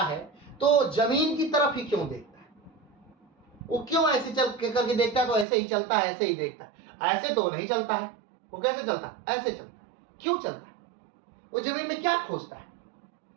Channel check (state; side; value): drops out; left; at 5.5 s